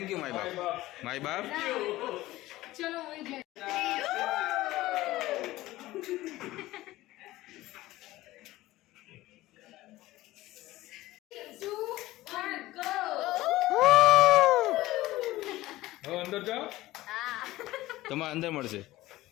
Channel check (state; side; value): quieter; right; 17.2 dB